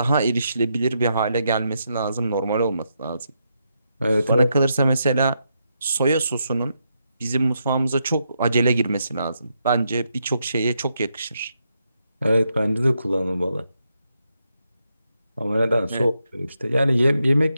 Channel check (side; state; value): both; inverted; correlation -0.81